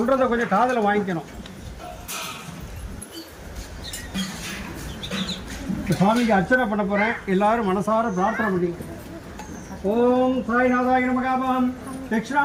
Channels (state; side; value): identical; both; correlation 1.00